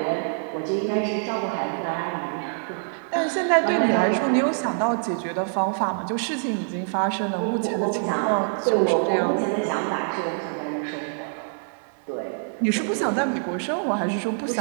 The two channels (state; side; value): silent; left; 62 dB below the other